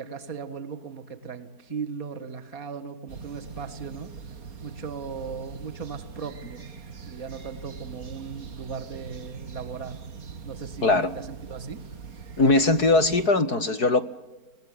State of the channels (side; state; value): right; late; 4.7 ms